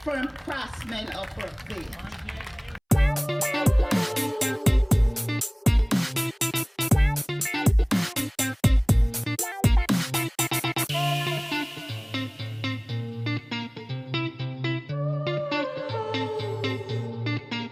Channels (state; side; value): identical; both; correlation 1.00